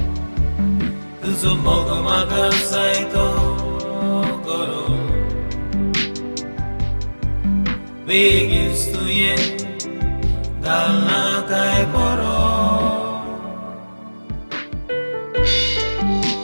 तुझं मग मग जायतो करू Begins to yen Galna kai poro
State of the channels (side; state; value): both; inverted; correlation -1.00